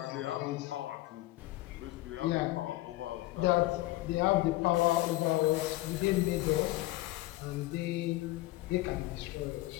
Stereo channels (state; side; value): quieter; right; 18.2 dB